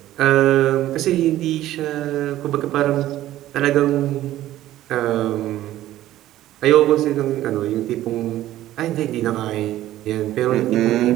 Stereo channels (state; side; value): quieter; left; 14.1 dB